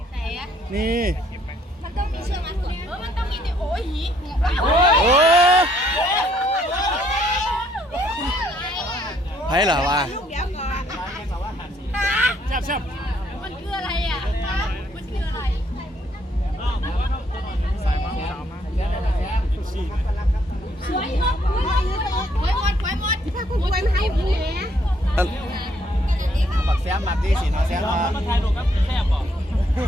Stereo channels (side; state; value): both; normal; correlation 0.68